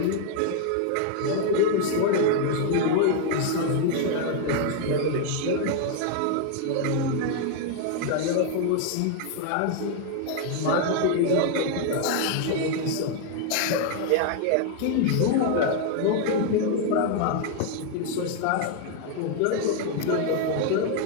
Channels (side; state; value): both; different; correlation 0.00